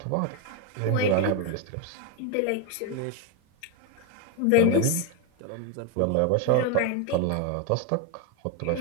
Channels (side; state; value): both; different; correlation 0.01